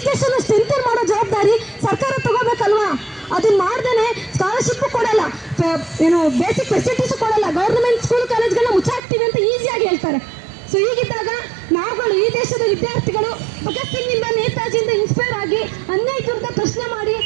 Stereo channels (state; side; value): drops out; left; at 9.0 s